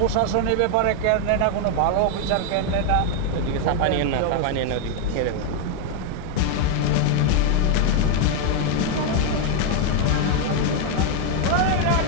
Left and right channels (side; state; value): both; different; correlation 0.01